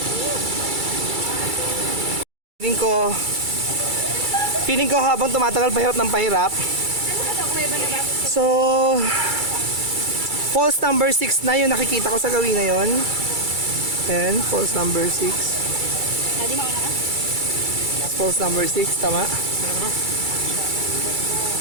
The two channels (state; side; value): late; left; 2.3 ms